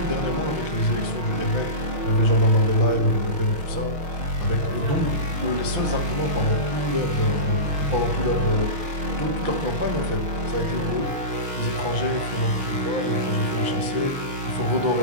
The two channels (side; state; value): left; late; 6.3 ms